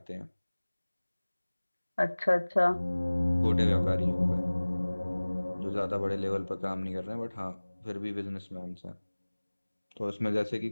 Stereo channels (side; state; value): both; inverted; correlation -1.00